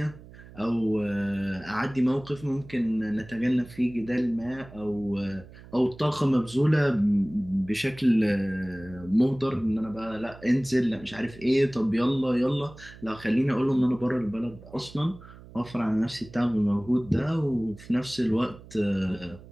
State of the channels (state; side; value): noise; right; hum, 19 dB below the sound